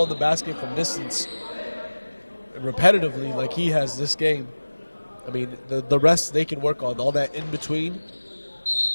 in the basket from distance repetitively like he has this game, I mean, the rest they can work on, all that in between.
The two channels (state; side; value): inverted; both; correlation -1.00